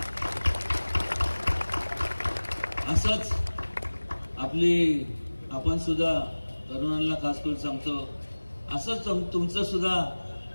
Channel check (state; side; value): inverted; both; correlation -1.00